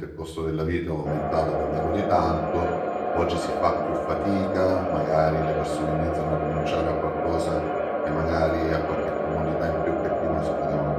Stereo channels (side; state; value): both; identical; correlation 1.00